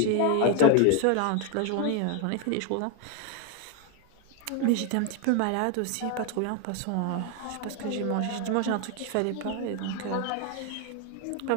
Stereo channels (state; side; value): different; both; correlation 0.01